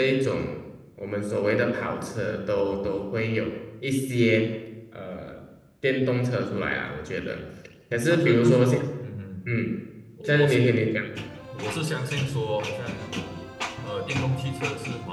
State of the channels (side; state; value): both; identical; correlation 1.00